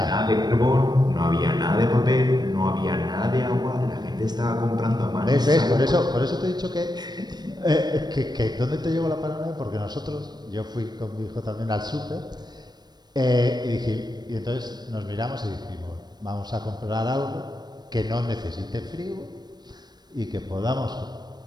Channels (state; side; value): late; left; 0.20 ms